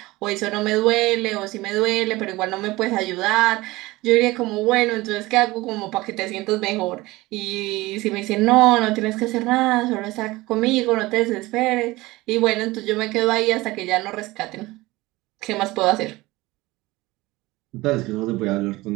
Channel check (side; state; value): left; quieter; 20.1 dB